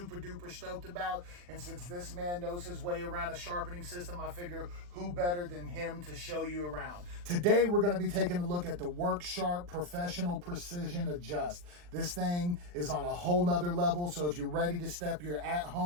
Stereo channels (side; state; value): left; late; 40 ms